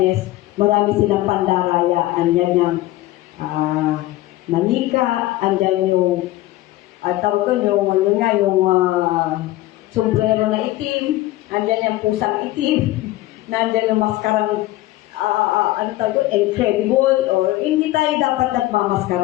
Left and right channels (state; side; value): quieter; right; 16.8 dB